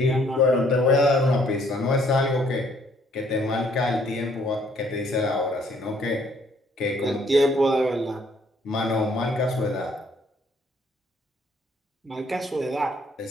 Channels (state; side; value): normal; both; correlation 0.65